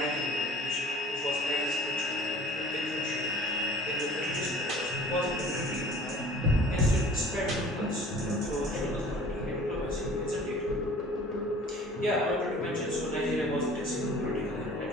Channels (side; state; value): both; normal; correlation 0.47